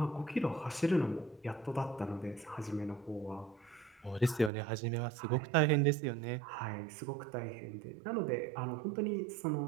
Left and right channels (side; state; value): left; drops out; at 4.5 s